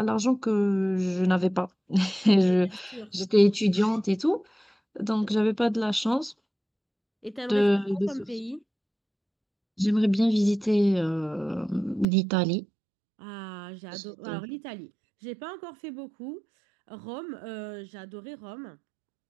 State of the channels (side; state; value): left; drops out; at 12.1 s